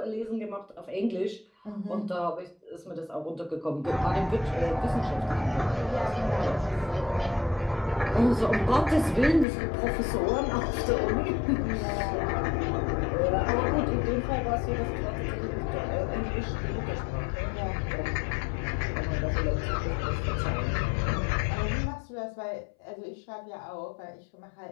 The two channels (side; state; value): right; drops out; at 9.5 s